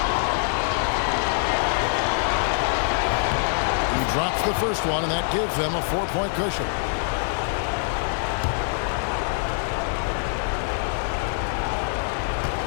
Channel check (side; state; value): right; silent; digital silence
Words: He drops the first one, and that gives them a 4-point cushion.